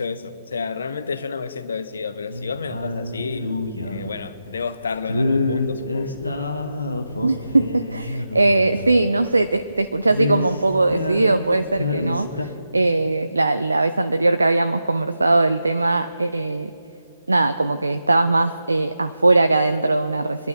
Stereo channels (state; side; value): inverted; both; correlation -0.89